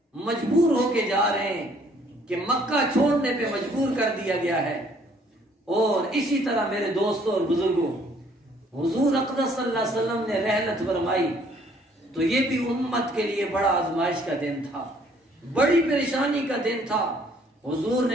مجبور ہو کے جا رہے ہیں کہ مکہ چھوڑنے پہ مجبور کر دیا گیا ہے۔ اور اسی طرح میرے دوستوں اور بزرگوں، حضور اقدس صلی اللہ علیہ وسلم نے رحلت فرمائی تو یہ بھی امت کے لیے بڑا آزمائش کا دن تھا، بڑی پریشانی کا دن تھا۔ حضور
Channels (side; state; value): both; normal; correlation 0.62